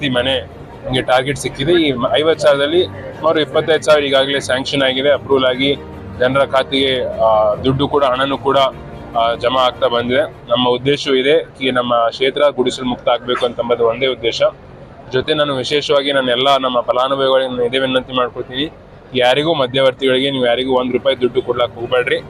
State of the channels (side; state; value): both; identical; correlation 1.00